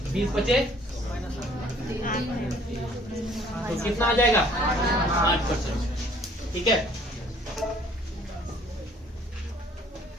-20 बचे, तो कितना आ जाएगा? 8%। ठीक है,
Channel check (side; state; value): both; normal; correlation 0.57